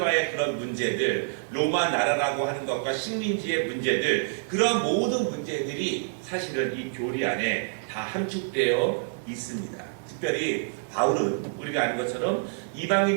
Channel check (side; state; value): left; silent; digital silence